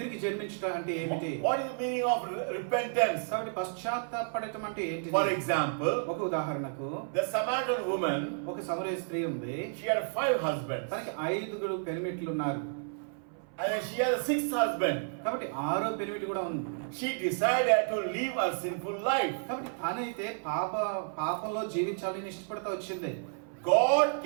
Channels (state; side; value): silent; left; 57 dB below the other